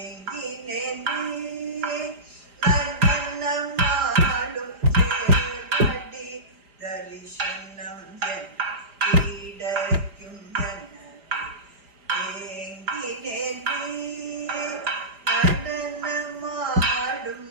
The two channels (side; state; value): left; late; 4.9 ms